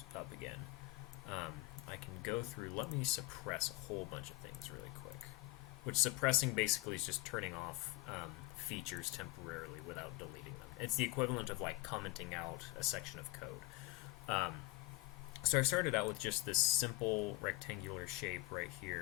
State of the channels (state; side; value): quieter; right; 19.1 dB